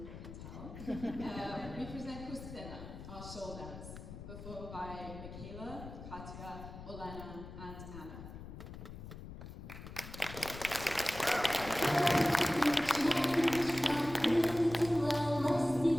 can tell, we present khustkamy, our shawl dance, performed by Mikayla, Katya, Olena, and Anna. Прилетіла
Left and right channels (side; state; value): left; noise; rumble, 12 dB below the sound